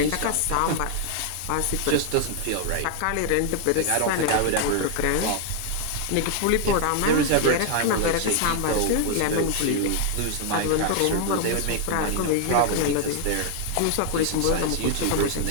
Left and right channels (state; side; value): different; both; correlation 0.00